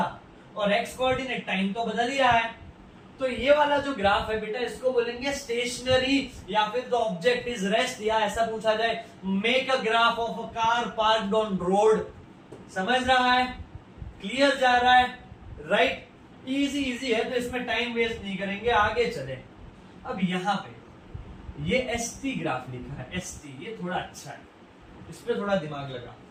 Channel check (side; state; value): both; identical; correlation 1.00